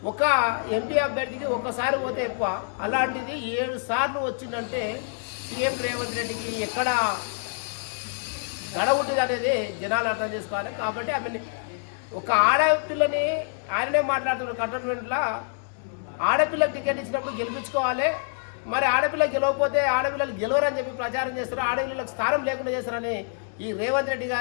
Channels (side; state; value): right; silent; digital silence